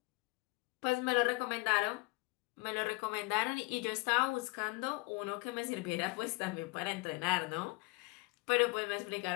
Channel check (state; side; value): quieter; right; 26.1 dB